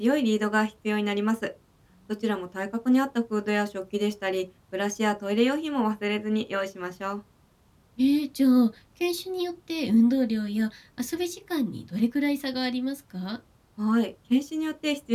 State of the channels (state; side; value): identical; both; correlation 1.00